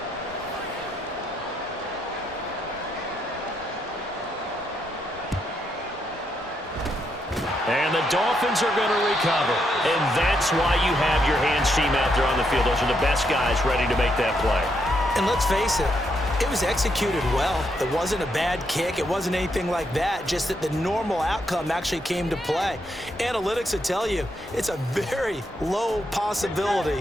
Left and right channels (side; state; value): both; normal; correlation 0.78